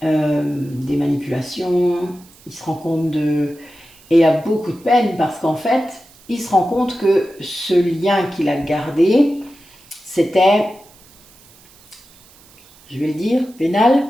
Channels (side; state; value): right; noise; hiss, 26 dB below the sound